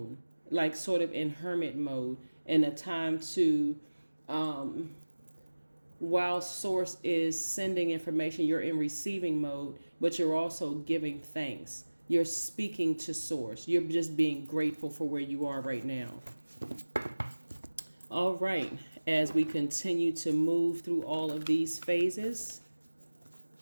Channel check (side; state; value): both; inverted; correlation -1.00